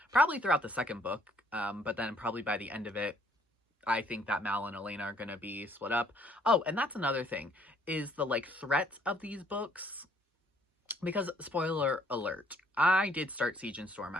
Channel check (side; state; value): both; normal; correlation 0.64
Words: probably throughout the second book, but then probably by the end of it, I think that Mal and Elena are going to be split up. Oh, and that's another thing, is the, like, threats of these books. Because, spoiler alert, I did start Siege and Storm,